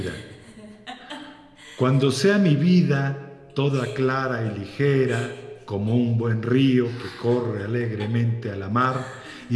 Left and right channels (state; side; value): identical; both; correlation 1.00